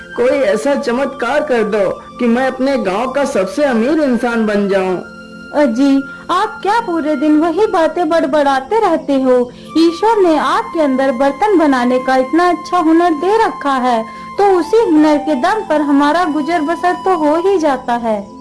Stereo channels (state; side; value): identical; both; correlation 1.00